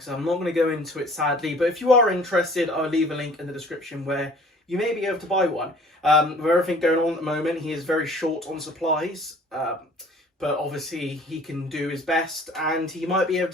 said, I'm not going to go into it sadly, but if you are interested, I'll leave a link in the description where you may be able to buy one. With everything going on at the moment, he is very short on supplies, but obviously he can do his best, and he might be able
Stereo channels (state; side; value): normal; both; correlation 0.51